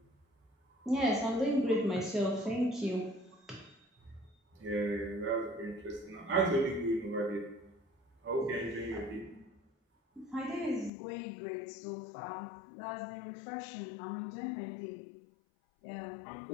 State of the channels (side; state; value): right; drops out; at 10.9 s